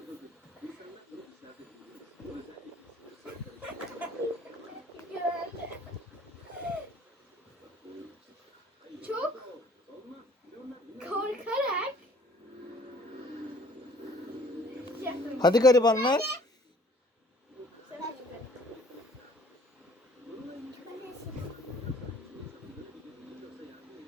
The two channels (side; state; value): both; normal; correlation 0.55